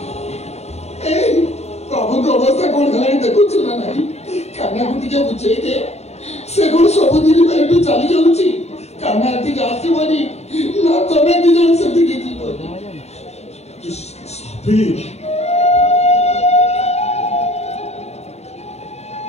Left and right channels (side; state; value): right; late; 0.31 ms